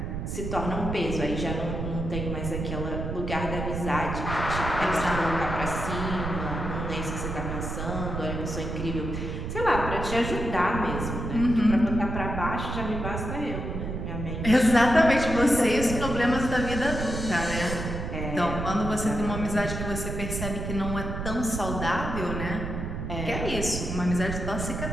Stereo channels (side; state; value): right; noise; rumble, 4 dB below the sound